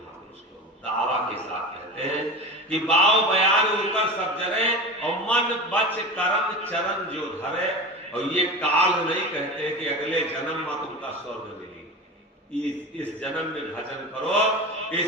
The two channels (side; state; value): both; normal; correlation 0.29